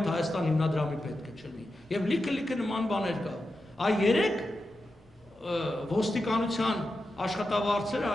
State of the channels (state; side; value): normal; both; correlation 0.90